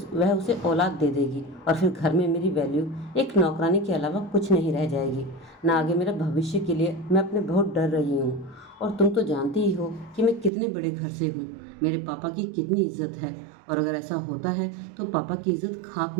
वह उसे औलाद दे देगी और फिर घर में मेरी वैल्यू एक नौकरानी के अलावा कुछ नहीं रह जाएगी। ना आगे मेरा भविष्य के लिए मैं अपने बहुत डर रही हूँ, और तुम तो जानती ही हो कि मैं कितने बड़े घर से हूँ, मेरे पापा की कितनी इज्जत है, और अगर ऐसा होता है तो पापा की इज्जत खाक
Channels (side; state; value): left; drops out; at 10.5 s